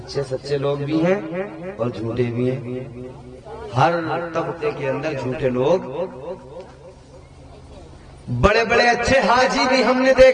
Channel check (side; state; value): both; identical; correlation 1.00